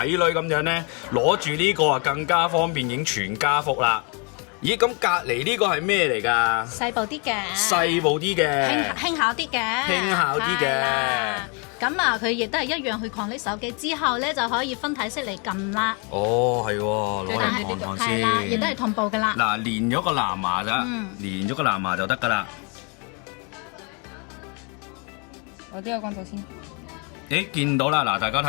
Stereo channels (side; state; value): right; quieter; 34.4 dB